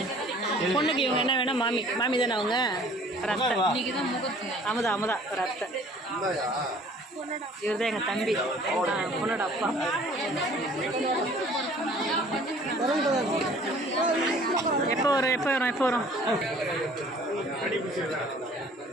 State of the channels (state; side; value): normal; both; correlation 0.53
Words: பொண்ணுக்கு இவங்க என்ன வேணும்? மாமி தானே அவங்க. ஒரு அத்தை, அமுதா ஒரு அத்தை. இவர் தான் எங்கள் தம்பி, பொண்ணோட அப்பா. எப்போ வரும்?